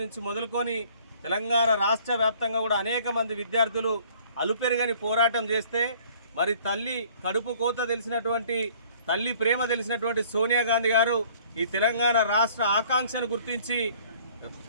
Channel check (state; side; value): inverted; both; correlation -0.55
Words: నుంచి మొదలుకొని తెలంగాణ రాష్ట్ర వ్యాప్తంగా కూడా అనేక మంది విద్యార్థులు అలుపెరుగని పోరాటం చేస్తే మరి తల్లి కడుపు కోత తెలిసినటువంటి తల్లి ప్రేమ తెలిసినటువంటి సోనియా గాంధీ గారు ఈ తెలంగాణ రాష్ట్ర ఆకాంక్షను గుర్తించి